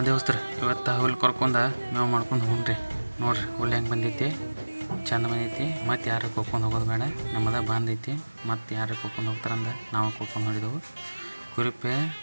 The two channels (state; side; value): inverted; both; correlation -1.00